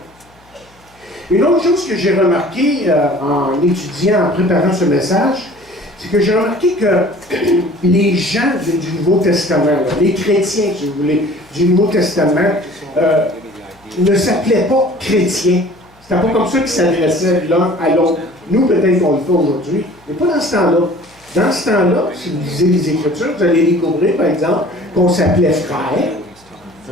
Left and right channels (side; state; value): left; noise; hum, 30 dB below the sound